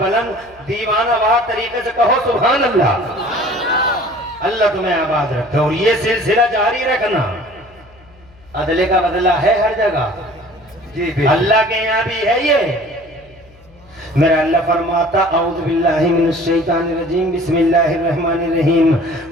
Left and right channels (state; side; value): noise; left; hum, 27 dB below the sound